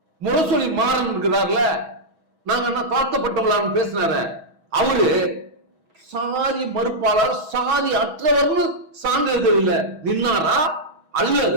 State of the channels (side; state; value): left; late; 6.2 ms